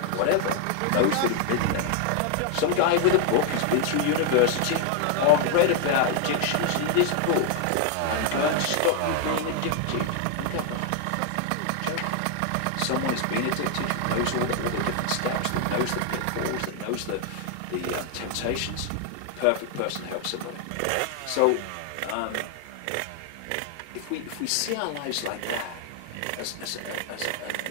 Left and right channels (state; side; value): different; both; correlation 0.00